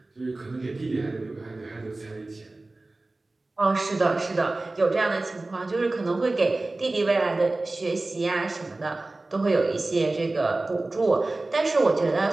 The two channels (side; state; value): left; quieter; 3.0 dB